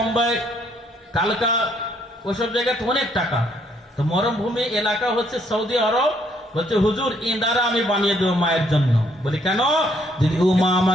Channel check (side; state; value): both; normal; correlation 0.68